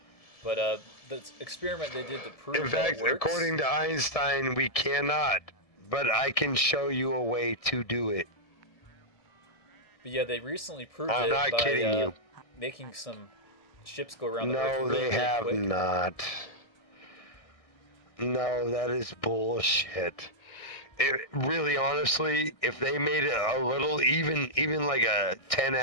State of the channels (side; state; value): right; late; 1.6 ms